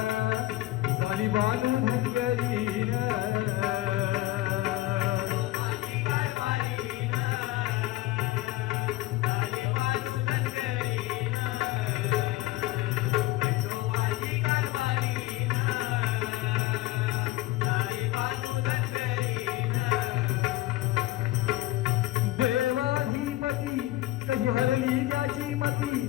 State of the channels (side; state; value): right; quieter; 16.9 dB